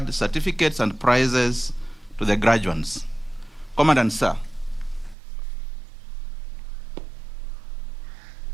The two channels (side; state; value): left; drops out; at 5.2 s